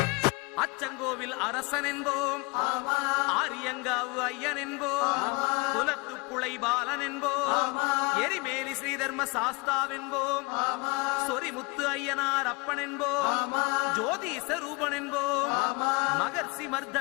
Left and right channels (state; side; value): quieter; right; 27.1 dB